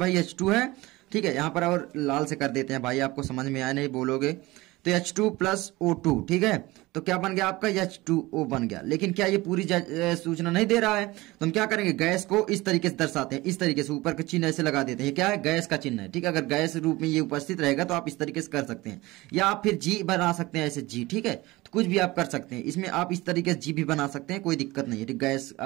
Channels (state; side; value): quieter; left; 20.4 dB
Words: H2 है, ठीक है, यहाँ पर और लाल से कर देते हैं भाई, आपको समझ में आया नहीं बोलोगे, तो H2 प्लस O2, ठीक है। तो क्या बन गया आपका? H2O बन गया। लेकिन क्या ये पूरी सूचना नहीं दे रहा है? तो हम क्या करेंगे, गैस को इस तरीके से दर्शाते हैं, इस तरीके से ऊपर का चिन्ह ऐसे लगा देते हैं। क्या है? गैस का चिन्ह है, ठीक है। अगर गैस रूप में ये उपस्थित रहेगा तो आप इस तरीके से कर सकते हैं, या आप फिर G बना सकते हैं, ऐसे G, ठीक है। तो कुछ भी आप कर सकते हैं, इसमें आप इस तरीके से G भी बना सकते हैं, कोई दिक्कत नहीं है। गैस